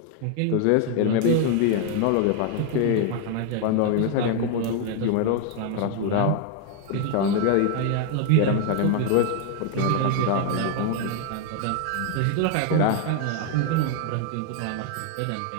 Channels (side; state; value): both; different; correlation 0.00